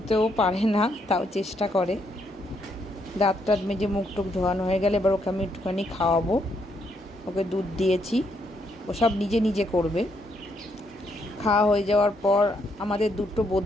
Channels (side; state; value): both; normal; correlation 0.75